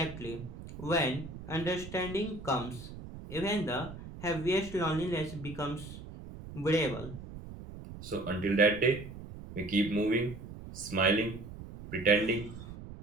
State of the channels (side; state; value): right; noise; rumble, 12 dB below the sound